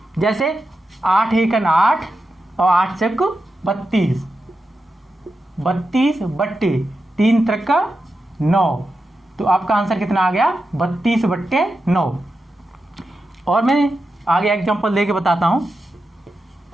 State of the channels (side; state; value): both; normal; correlation 0.89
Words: जैसे 8 एकन 8 और 8 चक 32, 32 बट्टे 3 त्रिक 9, तो आपका आंसर कितना आ गया, 32/9। और मैं आगे एग्जांपल देके बताता हूं।